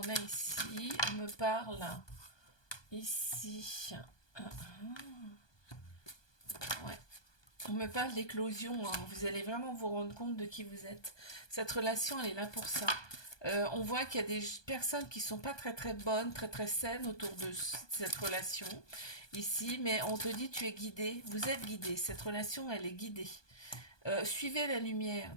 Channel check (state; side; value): late; right; 1.2 ms